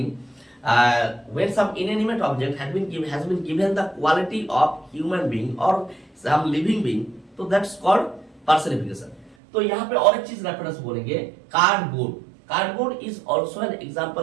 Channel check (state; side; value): drops out; left; at 9.3 s